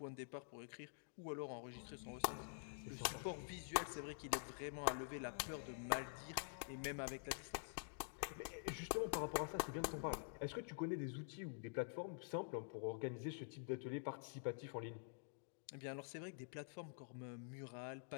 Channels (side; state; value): right; silent; digital silence